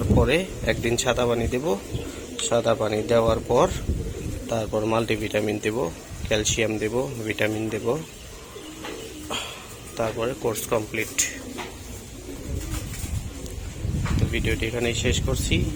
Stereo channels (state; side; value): identical; both; correlation 1.00